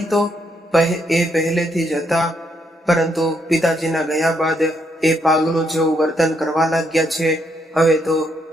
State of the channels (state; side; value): normal; both; correlation 0.75